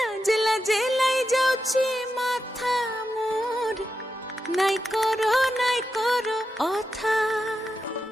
লাজে লাই যাଉଛି মাথা মোর, নাই করো অথা।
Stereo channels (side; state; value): both; normal; correlation 0.88